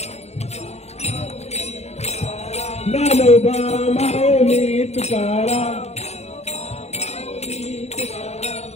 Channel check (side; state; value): right; late; 0.31 ms